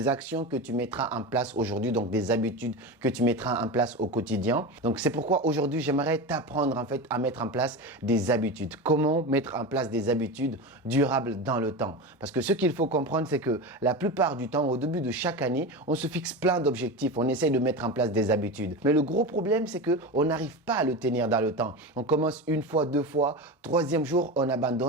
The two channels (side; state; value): both; normal; correlation 0.24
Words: actions que tu mettras en place aujourd'hui, donc des habitudes que tu mettras en place au quotidien? Donc c'est pourquoi aujourd'hui j'aimerais t'apprendre en fait à mettre en place des habitudes. Comment mettre en place des habitudes durables dans le temps? Parce que ce qu'il faut comprendre, c'est que la plupart du temps, au début de chaque année, on se fixe plein d'objectifs, on essaye de mettre en place des habitudes. Mais le gros problème, c'est qu'on n'arrive pas à le tenir dans le temps. On commence une fois, deux fois, troisième jour, on